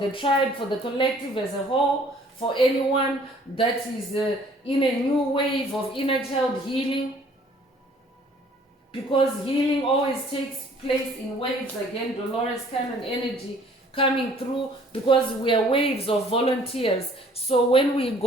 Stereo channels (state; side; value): normal; both; correlation 0.56